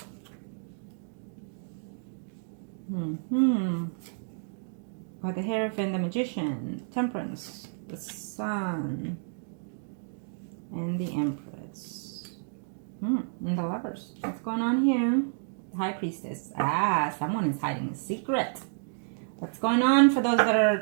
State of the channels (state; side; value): silent; left; digital silence